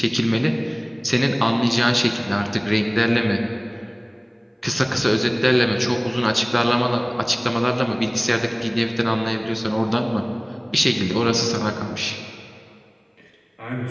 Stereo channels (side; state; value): both; identical; correlation 1.00